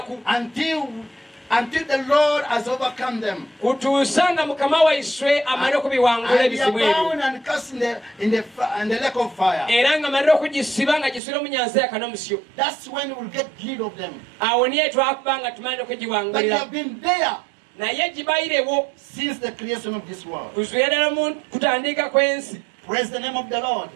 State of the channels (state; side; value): drops out; left; at 11.2 s